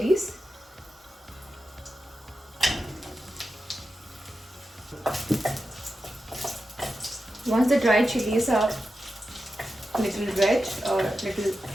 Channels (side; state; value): both; normal; correlation 0.90